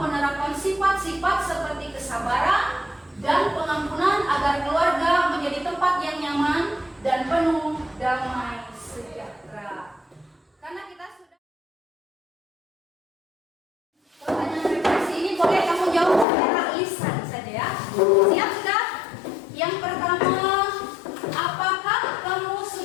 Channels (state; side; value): drops out; right; at 16.2 s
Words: sifat-sifat seperti kesabaran dan pengampunan agar keluarga menjadi tempat yang nyaman dan penuh damai sejahtera. Karena kita sudah pertanyaan refleksi ini boleh kamu jawab secara lisan saja ya. Siap sudah? Yang pertama, apakah kamu